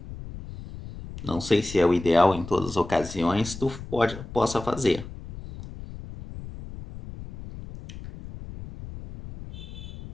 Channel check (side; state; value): left; noise; rumble, 13 dB below the sound